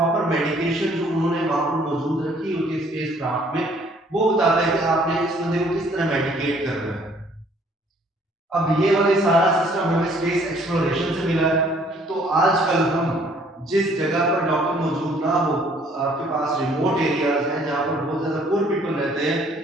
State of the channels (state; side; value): normal; both; correlation 0.60